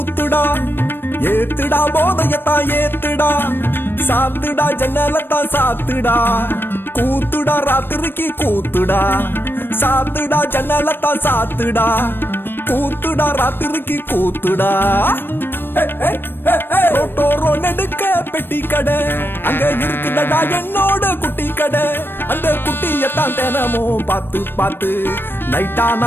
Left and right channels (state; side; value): late; right; 0.098 ms